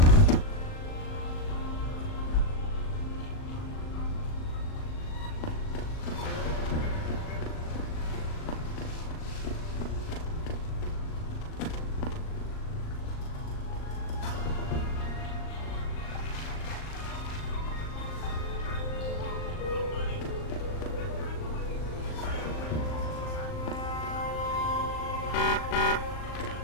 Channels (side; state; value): right; late; 39 ms